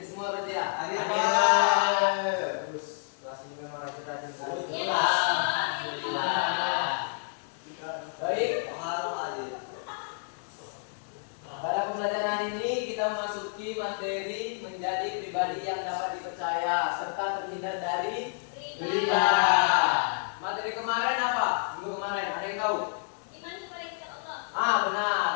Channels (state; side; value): silent; right; 58 dB below the other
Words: semua berarti ya? Hadir, Pak. Terus kelas ini memang rajin-rajin sekali. Baik. Pada pembelajaran hari ini kita memasuki materi menjadi pribadi yang dapat dipercaya serta terhindar dari riba. Materi kemarin apa? Minggu kemarin ada yang tahu?